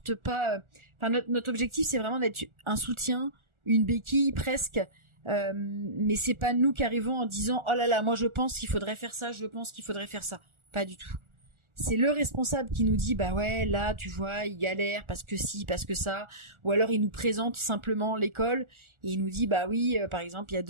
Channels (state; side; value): late; left; 1.4 ms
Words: pas. Notre objectif c'est vraiment d'être un soutien, une béquille presque. Mais c'est pas nous qui arrivons en disant oh là là, moi je pense qu'il faudrait faire ça, pas du tout. C'est le responsable qui nous dit ouais, là tu vois il galère parce que ci, parce que ça, ou alors il nous présente simplement l'école et il nous dit oui, par exemple il y a